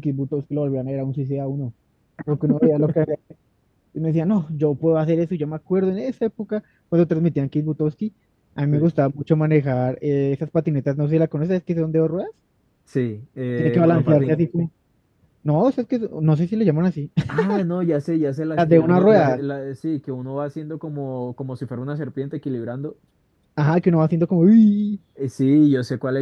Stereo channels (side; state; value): both; identical; correlation 1.00